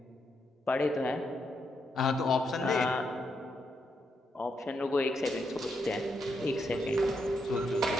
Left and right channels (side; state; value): both; normal; correlation 0.80